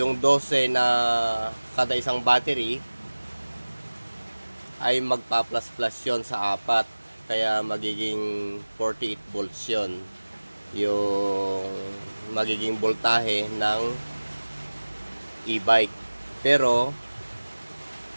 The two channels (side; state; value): both; inverted; correlation -1.00